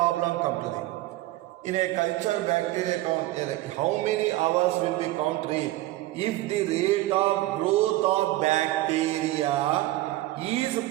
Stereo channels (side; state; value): left; quieter; 17.1 dB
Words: Come to them. In a culture bacteria count, how many hours will we count rate? If the rate of growth of bacteria is